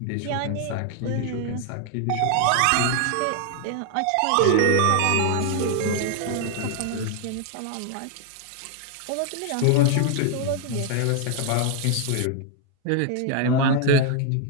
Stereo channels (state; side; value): different; both; correlation 0.00